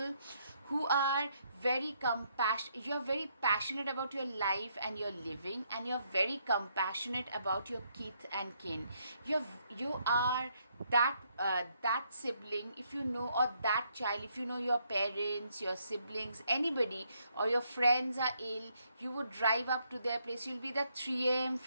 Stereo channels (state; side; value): inverted; both; correlation -0.73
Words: who are very compassionate. You're very passionate about your life and your living, and you're very compassionate about your kith and kin. You are that sibling, if you know, or that child, if you know your parents, your siblings, anybody, or your friends are ill, you would drive up to their place. You'll be the 3 a.m.